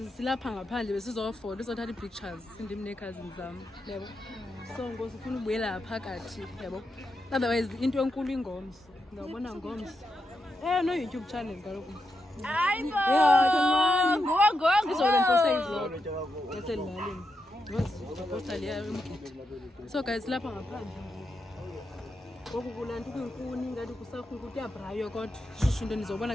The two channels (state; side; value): normal; both; correlation 0.85